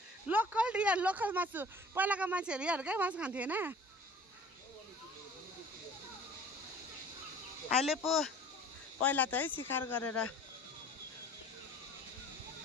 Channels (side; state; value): both; normal; correlation 0.47